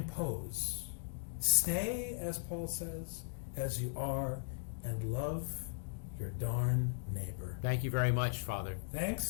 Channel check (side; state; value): right; silent; digital silence